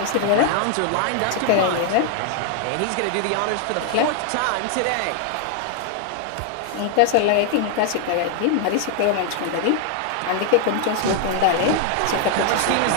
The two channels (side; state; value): both; different; correlation 0.00